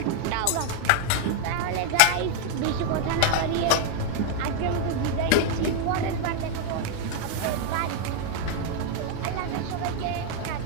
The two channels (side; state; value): both; different; correlation 0.00